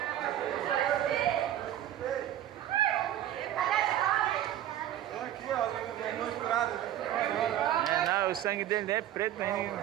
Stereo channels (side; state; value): left; quieter; 12.1 dB